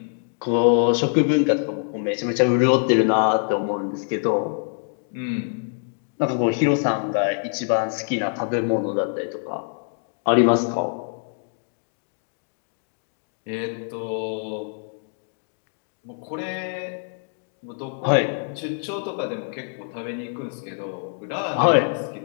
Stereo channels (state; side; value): silent; right; 62 dB below the other